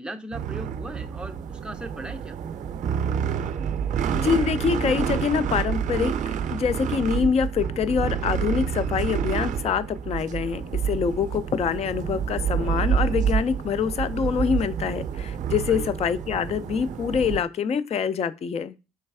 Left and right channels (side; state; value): both; normal; correlation 0.55